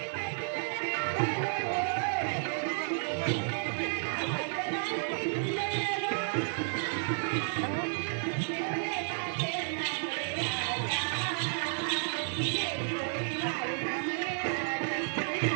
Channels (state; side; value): silent; left; digital silence